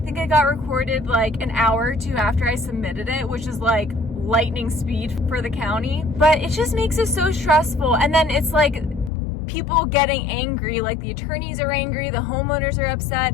it got recorded like an hour or 2 after I submitted it, which is like lightning speed for the county. But it just makes it so stressful. And then it's like people getting angry, like the attorneys are angry, the homeowners are upset.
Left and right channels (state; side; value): drops out; right; at 9.1 s